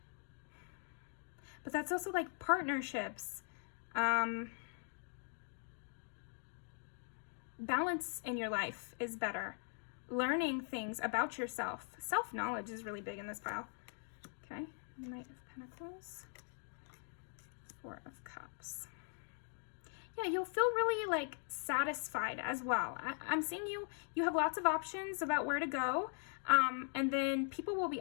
But that's also like partnerships. Balance in your life is better. Learning things about yourself. Self-knowledge is really big in this pile. Okay, Knight of Pentacles. 4 of Cups. Yeah, you'll feel really like satisfied as well. I'm seeing you have lots of options about where to go, and then people will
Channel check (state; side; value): silent; right; 50 dB below the other